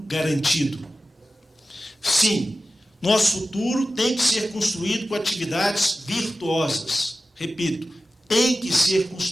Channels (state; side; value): normal; both; correlation 0.94